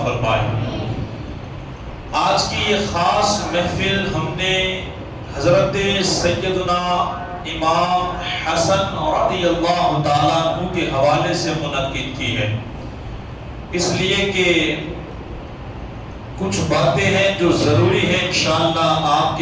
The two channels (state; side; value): identical; both; correlation 1.00